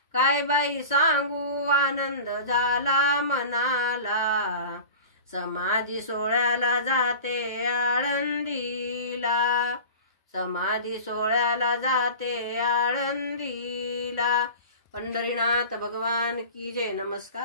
काय बाई सांगू आनंद झाला मनाला, समाधी सोहळ्याला जाते आळंदीला, समाधी सोहळ्याला जाते आळंदीला। पंढरीनाथ भगवान की जय।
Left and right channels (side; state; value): both; inverted; correlation -0.36